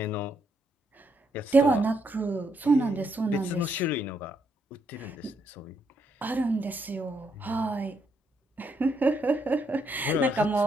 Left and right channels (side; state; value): both; normal; correlation 0.76